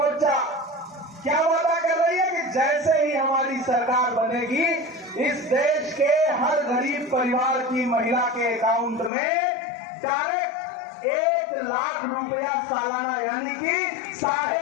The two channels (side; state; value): right; drops out; at 9.1 s